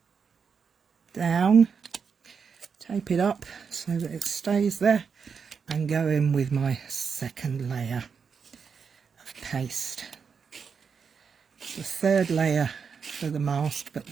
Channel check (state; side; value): quieter; left; 6.1 dB